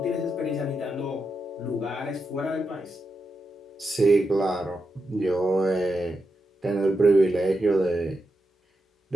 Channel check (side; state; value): both; normal; correlation 0.86